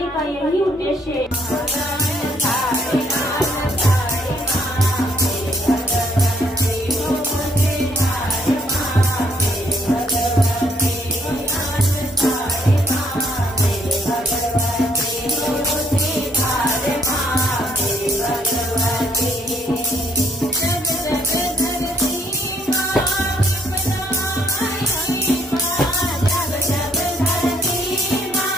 का यही उद्देश्य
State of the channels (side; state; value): both; normal; correlation 0.69